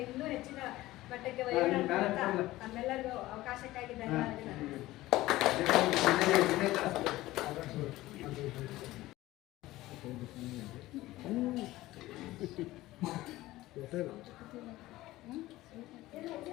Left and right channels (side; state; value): right; quieter; 17.2 dB